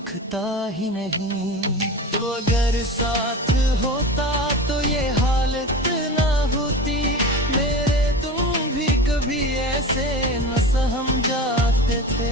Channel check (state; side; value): normal; both; correlation 0.31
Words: ही नहीं। तो अगर साथ होता तो ये हालत ना होती, मेरे तुम भी कभी ऐसे न सहम जाते